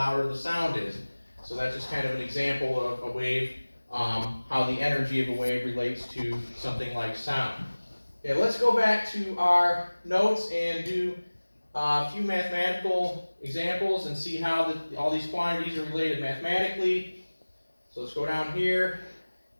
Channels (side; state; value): both; inverted; correlation -1.00